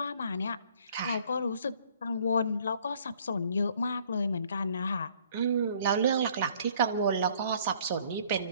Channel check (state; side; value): inverted; both; correlation -0.58